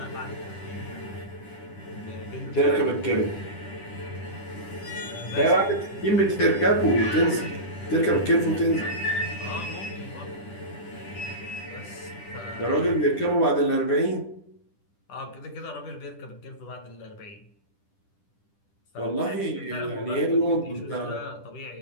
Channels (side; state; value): right; late; 10 ms